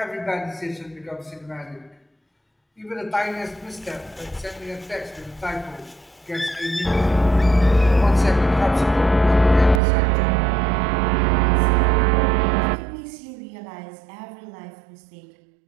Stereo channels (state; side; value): drops out; left; at 9.8 s